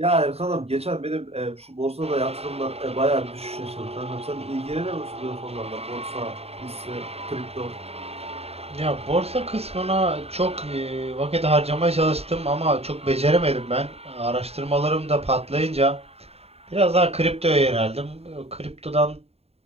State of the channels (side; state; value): left; late; 0.29 ms